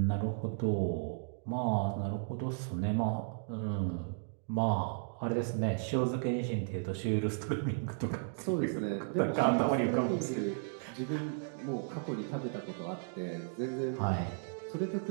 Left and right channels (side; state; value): left; silent; digital silence